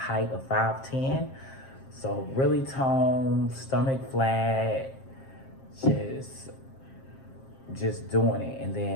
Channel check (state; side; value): late; right; 7.5 ms